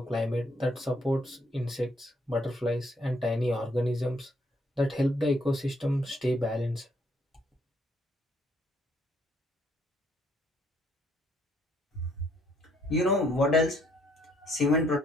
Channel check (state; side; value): normal; both; correlation 0.69